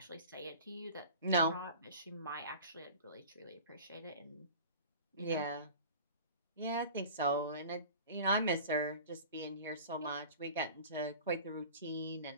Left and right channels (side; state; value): both; inverted; correlation -0.40